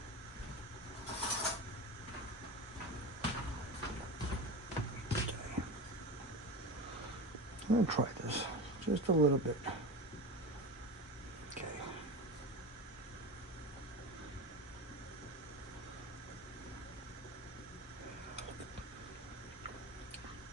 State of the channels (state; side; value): normal; both; correlation 0.26